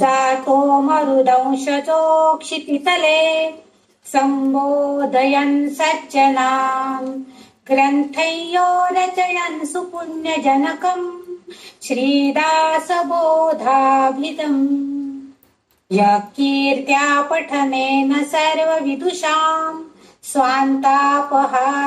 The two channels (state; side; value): identical; both; correlation 1.00